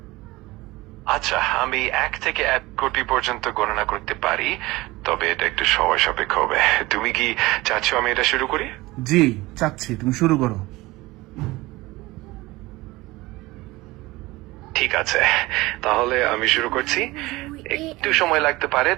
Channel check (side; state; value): left; quieter; 20.3 dB